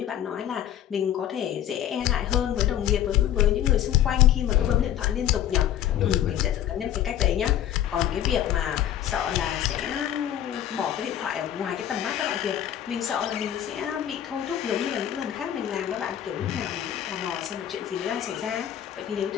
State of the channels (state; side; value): quieter; right; 11.2 dB